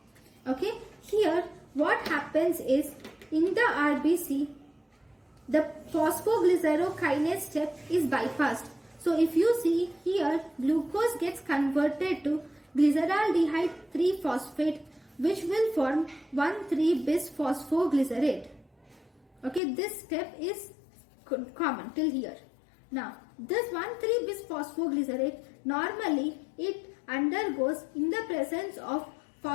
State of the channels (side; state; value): right; drops out; at 19.6 s